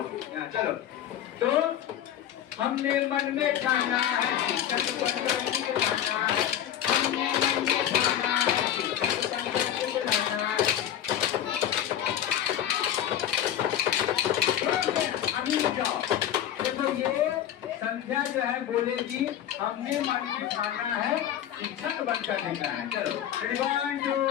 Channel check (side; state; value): right; quieter; 10.7 dB